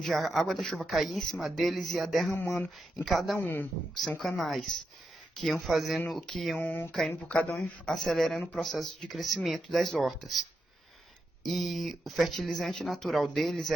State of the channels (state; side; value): normal; both; correlation 0.85